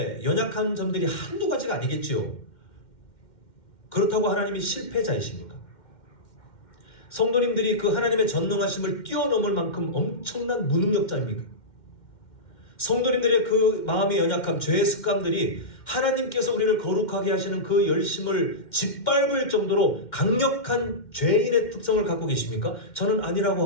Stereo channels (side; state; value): right; late; 2.1 ms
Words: 연약한 점들이 한두 가지가 아니겠지요. 그렇다고 하나님이 실패자이십니까? 성도님들이 그 하나님의 전능하심을 뛰어넘을 만큼 엄청난 무능력자입니까? 성도님들의 그 마음의 연약함, 죄의 습관들이 하나님께서 우리를 거룩하게 하시는 그 열심을 짓밟을 정도로 강력한 죄인의 특성을 갖고 계십니까? 저는 아니라고